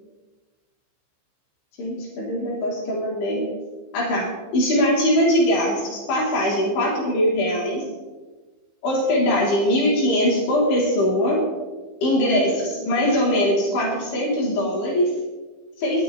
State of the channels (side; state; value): right; late; 15 ms